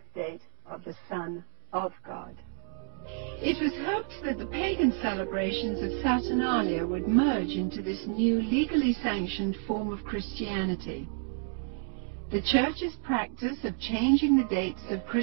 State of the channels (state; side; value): silent; left; 58 dB below the other